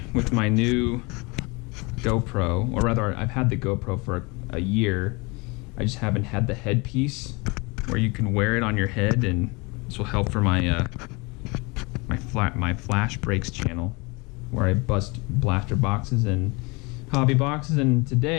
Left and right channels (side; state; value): right; quieter; 27.4 dB